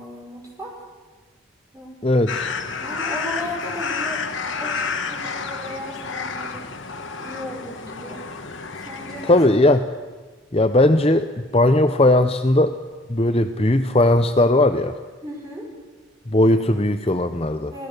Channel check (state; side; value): normal; both; correlation 0.56